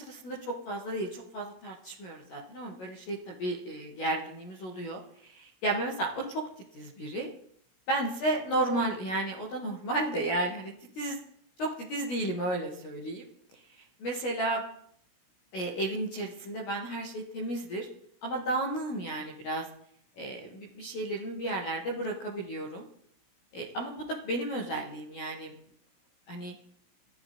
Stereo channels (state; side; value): late; right; 16 ms